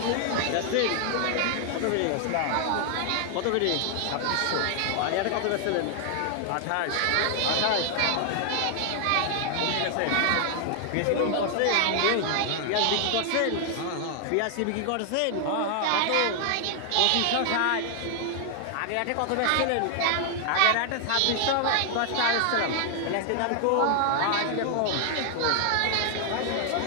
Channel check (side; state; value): both; different; correlation 0.00